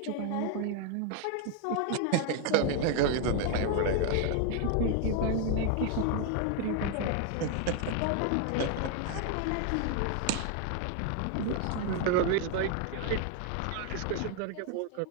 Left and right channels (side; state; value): both; different; correlation 0.01